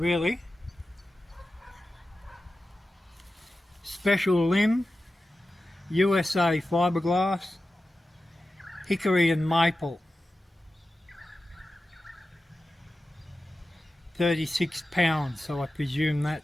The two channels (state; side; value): normal; both; correlation 0.93